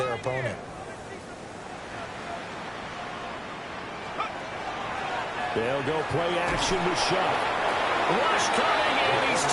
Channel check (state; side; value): identical; both; correlation 1.00